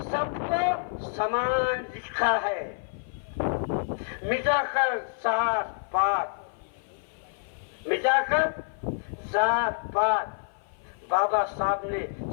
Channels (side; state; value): right; silent; 55 dB below the other